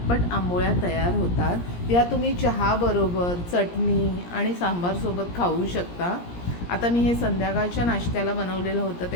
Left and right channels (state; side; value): late; right; 17 ms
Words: आंबोळ्या तयार होतात. या तुम्ही चहाबरोबर, चटणी आणि सांबारसोबत खाऊ शकता. आता मी हे संध्याकाळच्या नाश्त्याला बनवलेलं होतं,